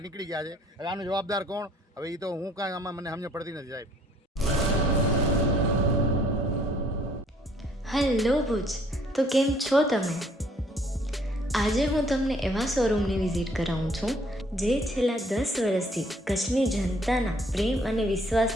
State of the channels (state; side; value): normal; both; correlation 0.62